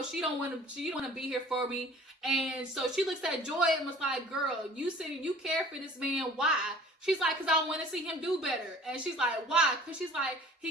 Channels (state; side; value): normal; both; correlation 0.48